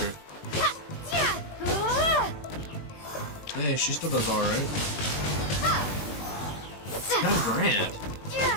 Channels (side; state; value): right; late; 20 ms